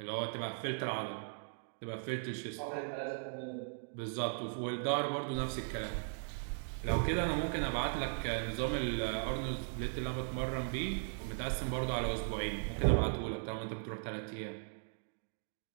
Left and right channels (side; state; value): left; silent; digital silence